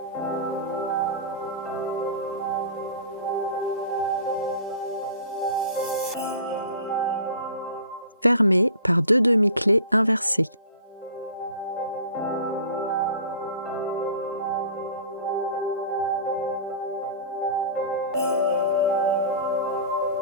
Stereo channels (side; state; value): both; inverted; correlation -0.41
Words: Fermer par 2 demi-clés inversées.